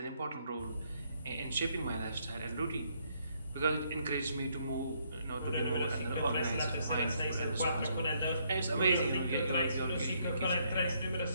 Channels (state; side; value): inverted; both; correlation -0.71